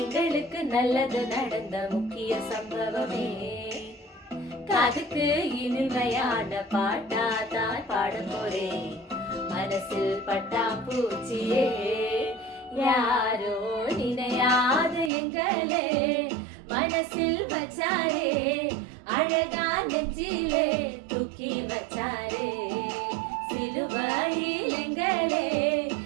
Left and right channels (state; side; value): drops out; left; at 15.1 s